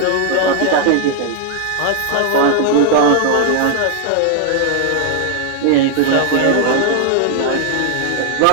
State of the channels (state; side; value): different; both; correlation 0.00